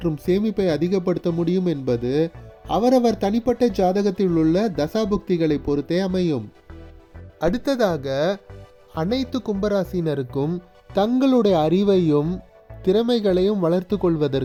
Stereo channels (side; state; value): both; identical; correlation 1.00